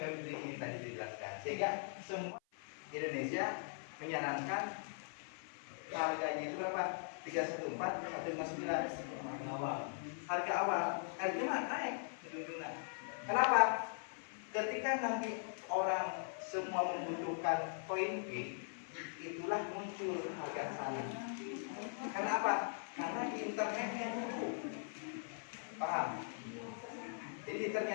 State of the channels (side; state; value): right; silent; 51 dB below the other